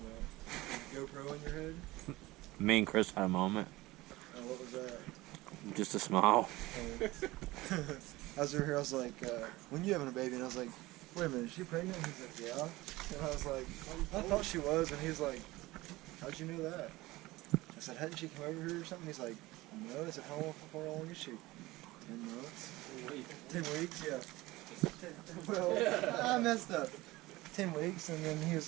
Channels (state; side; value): quieter; left; 19.4 dB